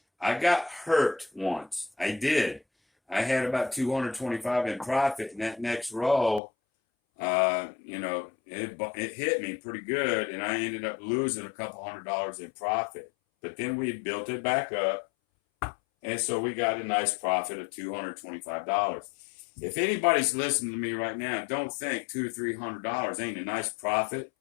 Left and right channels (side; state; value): right; drops out; at 6.4 s